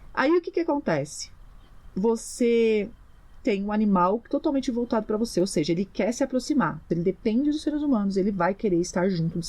Aí o que acontece? Você tem um animal totalmente voltado para você, ou seja, ele quer se aproximar. Ele depende dos seres humanos, ele vai querer estar junto dos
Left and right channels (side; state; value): both; identical; correlation 1.00